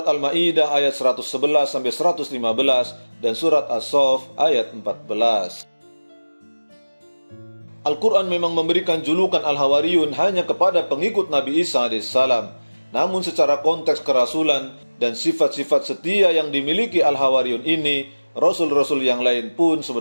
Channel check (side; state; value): both; inverted; correlation -1.00